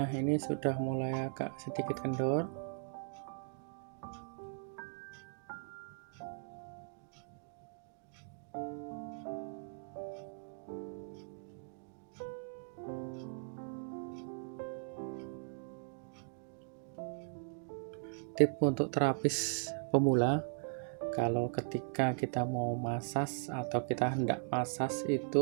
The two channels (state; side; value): silent; left; digital silence